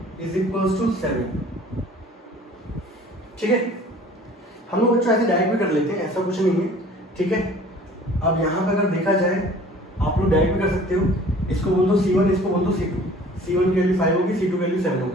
= 7, ठीक है। हम लोग बच्चों ऐसे डायरेक्ट भी कर लेते हैं, ऐसा कुछ नहीं है, ठीक है। अब यहाँ पे अगर देखा जाए आप लोग डायरेक्ट भी कर सकते हो, इसको बोल दो C1, इसको बोल दो C2। C1 की वैल्यू 5 होगी, C2 की वैल्यू 7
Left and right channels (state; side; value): normal; both; correlation 0.49